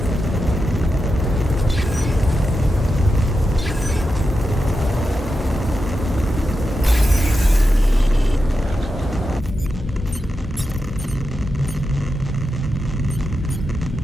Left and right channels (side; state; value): both; normal; correlation 0.89